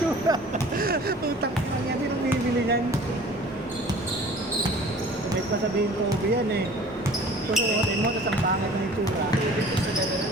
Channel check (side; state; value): both; normal; correlation 0.47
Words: Utang na niya din ang bibili niyan. May pa sabihin ko, yan eh. Susuotin mo, tapos ang pangit na yung sura. Ibig ko sa gano'n na